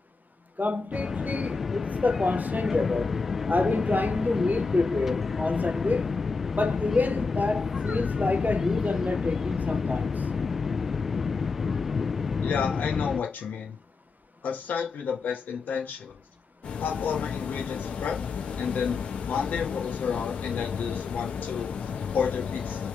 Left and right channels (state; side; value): quieter; right; 4.3 dB